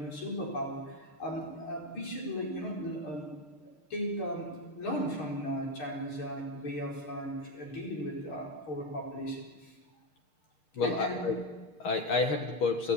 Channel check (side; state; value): right; late; 6.5 ms